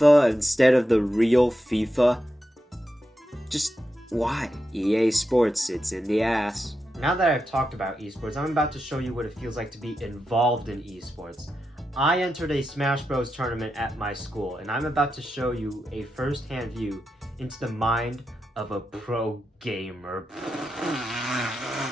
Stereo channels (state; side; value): normal; both; correlation 0.88